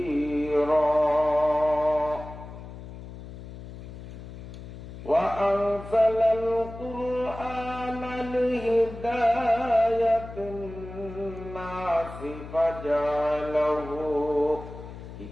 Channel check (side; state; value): left; noise; hum, 13 dB below the sound